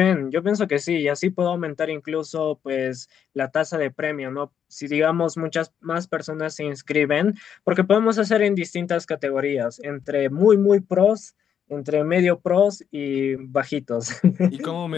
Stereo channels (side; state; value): right; quieter; 8.3 dB